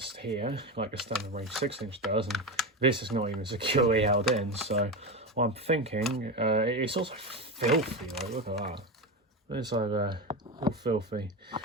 here, like a standard range 6-inch does, and this is not even securely held in. So, what I'm thinking, it's also filthy. Like, look at that. It's like all filthy.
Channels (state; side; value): normal; both; correlation 0.19